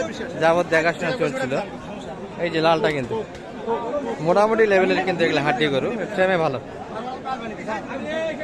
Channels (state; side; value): identical; both; correlation 1.00